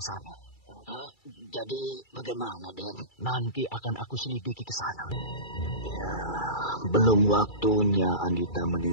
Jadi bagaimana, Den? Nanti akan aku selidiki ke sana. Ya, belum waktunya Andita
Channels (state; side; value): late; right; 2.3 ms